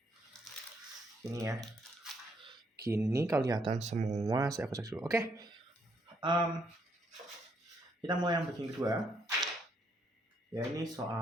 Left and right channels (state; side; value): normal; both; correlation 0.73